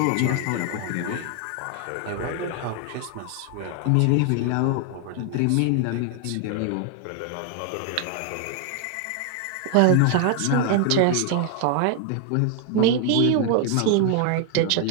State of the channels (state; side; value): different; both; correlation 0.00